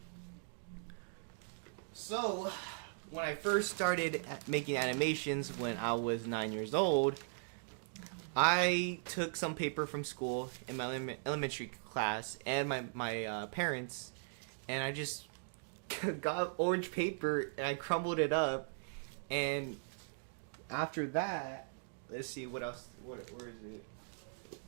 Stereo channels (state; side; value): silent; left; digital silence